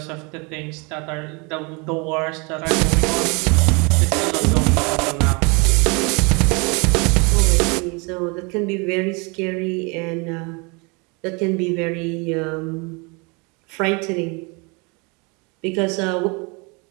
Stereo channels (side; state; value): left; quieter; 30.3 dB